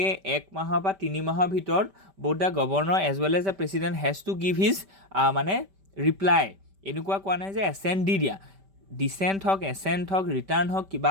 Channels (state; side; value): late; left; 5.1 ms